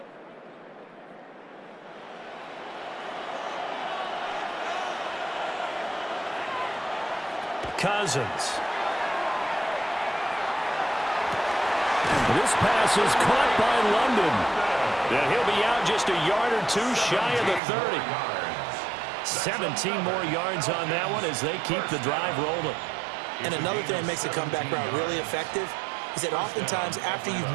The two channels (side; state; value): left; drops out; at 17.6 s